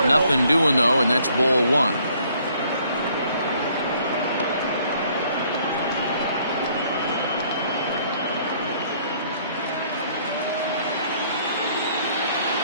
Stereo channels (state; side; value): inverted; both; correlation -0.62